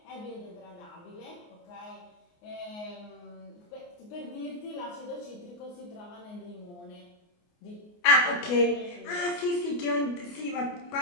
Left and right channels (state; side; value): late; right; 29 ms